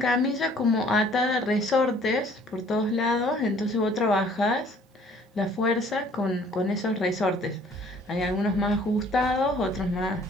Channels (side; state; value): both; normal; correlation 0.56